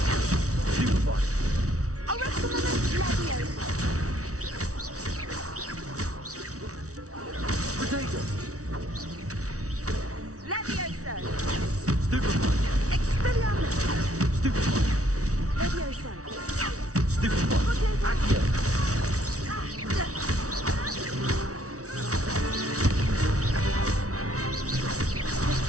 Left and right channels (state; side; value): late; left; 0.66 ms